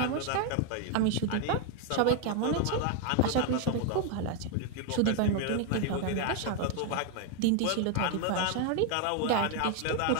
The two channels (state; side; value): different; both; correlation 0.00